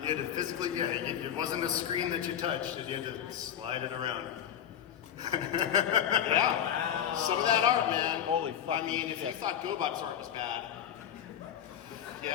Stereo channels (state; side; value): quieter; right; 9.7 dB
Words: You had to physically, it wasn't a screen that you touched, you had to slide it around. Yeah. Some of that art, man. Holy fuck. I mean, if you thought GoBot's art was bad.